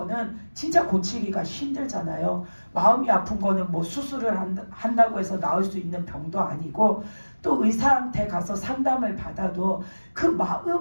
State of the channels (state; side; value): inverted; both; correlation -1.00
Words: 진짜 고치기가 힘들잖아요. 마음이 아픈 거는 뭐 수술을 한다고 해서 나을 수 있는 병도 아니고, 또 의사한테 가서 상담을 받아도 그